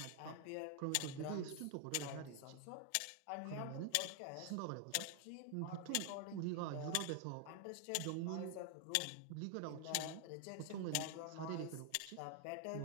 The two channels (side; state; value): both; different; correlation 0.00